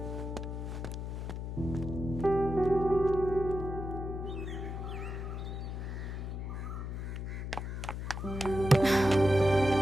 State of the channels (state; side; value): noise; left; hum, 5 dB below the sound